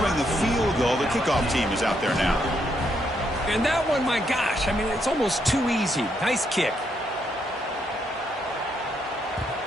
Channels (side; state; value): both; normal; correlation 0.76